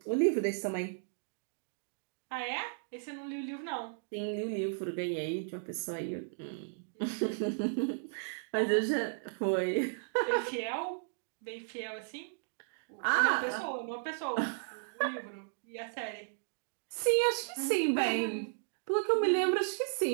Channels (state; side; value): silent; left; digital silence